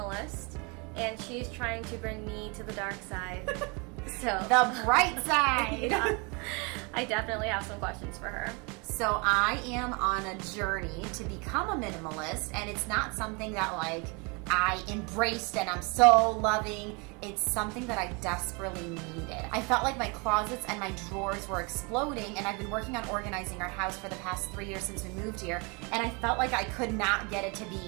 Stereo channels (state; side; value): quieter; left; 30.7 dB